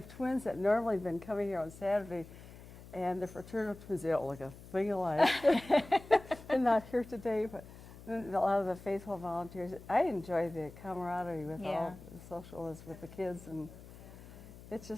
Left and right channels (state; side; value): noise; left; hum, 17 dB below the sound